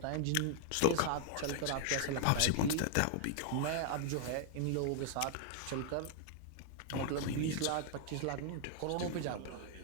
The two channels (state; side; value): different; both; correlation 0.00